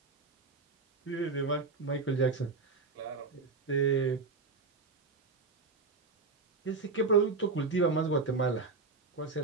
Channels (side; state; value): left; quieter; 4.1 dB